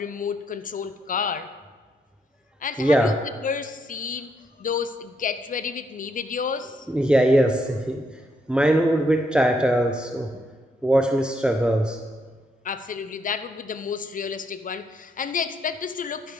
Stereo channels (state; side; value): normal; both; correlation 0.76